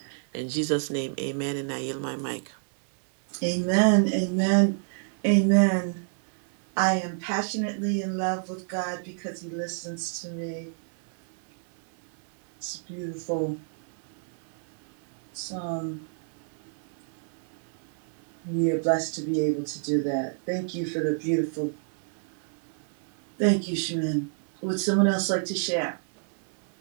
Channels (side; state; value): left; silent; 59 dB below the other